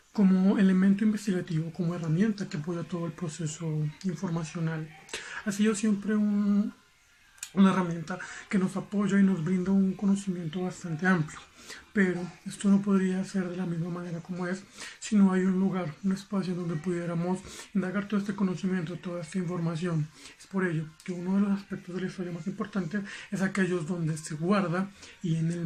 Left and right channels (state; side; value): identical; both; correlation 1.00